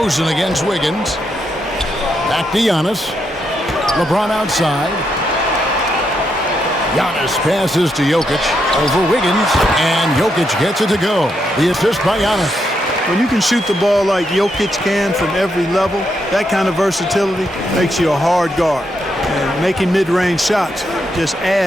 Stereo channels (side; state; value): both; normal; correlation 0.80